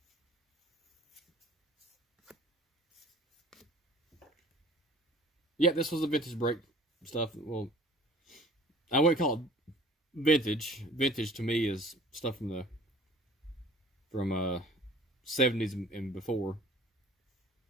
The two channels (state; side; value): normal; both; correlation 0.49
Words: Yeah, this was the vintage brake stuff. Well, I wouldn't call it vintage. Vintage to me is stuff from the 70s and before.